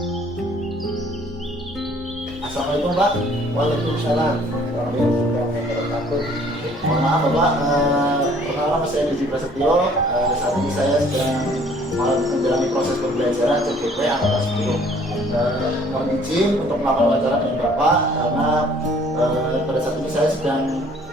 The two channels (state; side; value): normal; both; correlation 0.57